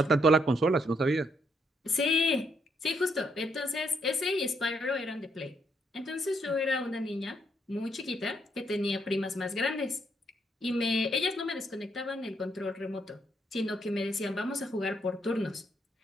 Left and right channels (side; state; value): both; normal; correlation 0.74